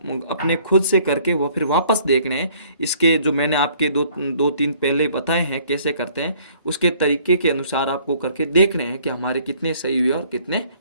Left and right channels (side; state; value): both; inverted; correlation -0.59